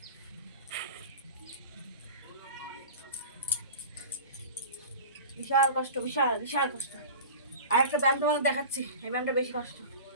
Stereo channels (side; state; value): both; inverted; correlation -0.35